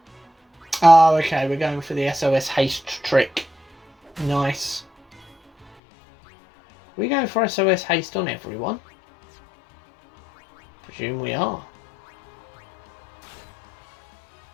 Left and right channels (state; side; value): drops out; right; at 5.8 s